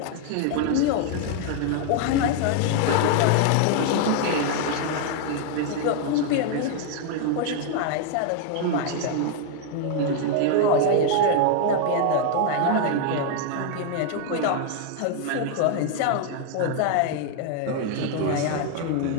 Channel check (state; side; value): different; both; correlation 0.00